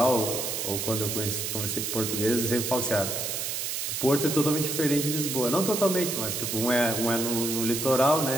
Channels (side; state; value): right; noise; hiss, 2 dB below the sound